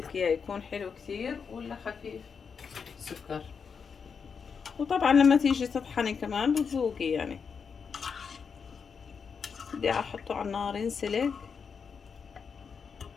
اياه، يكون حلو كثير ولا خفيف سكر. وطبعا لما تيجي تطحني كمان بتذوقي يعني. بدي احطه على النار ينسلق.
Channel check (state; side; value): quieter; right; 6.0 dB